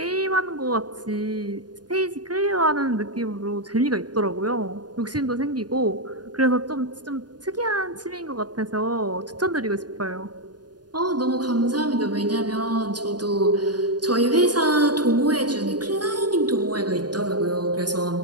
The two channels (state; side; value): late; left; 0.69 ms